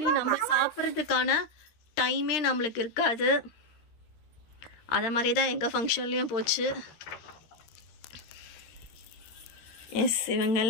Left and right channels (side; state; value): right; late; 13 ms